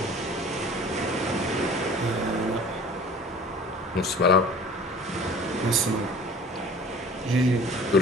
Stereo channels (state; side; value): normal; both; correlation 0.45